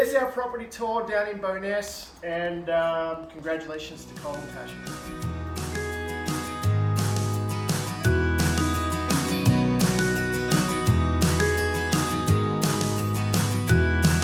our property tour down in Bowness, and congratulations to Cole and Tasha.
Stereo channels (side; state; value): both; identical; correlation 1.00